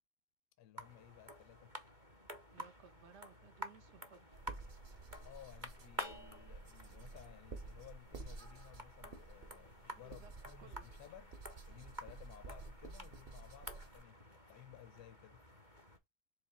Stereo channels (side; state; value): left; late; 2.2 ms